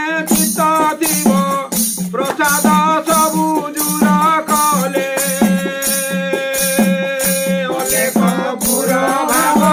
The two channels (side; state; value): both; identical; correlation 1.00